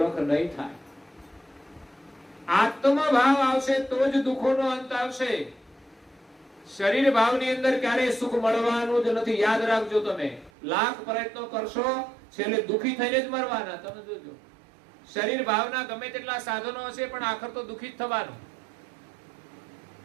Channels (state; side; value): drops out; left; at 10.5 s